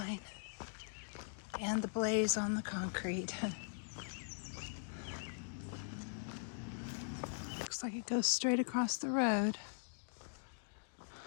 And the blaze on the concrete. Looks like it goes straight across the road.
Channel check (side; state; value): right; silent; digital silence